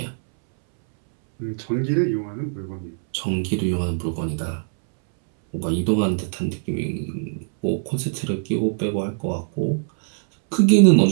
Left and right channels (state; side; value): silent; left; 64 dB below the other